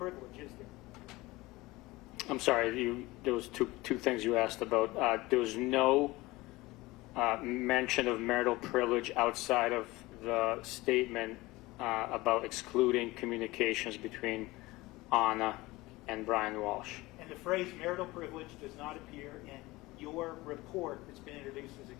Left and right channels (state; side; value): quieter; right; 20.5 dB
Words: is there? I'm sorry, there was two things you asked about. There was no mention of marital privilege outside of the statement about excluding communications between Anna and Brian Walsh. And the phrase marital privilege does not appear in your report that's been introduced as